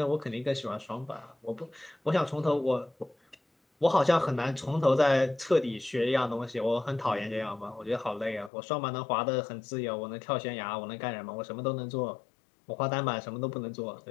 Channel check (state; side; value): drops out; right; at 8.5 s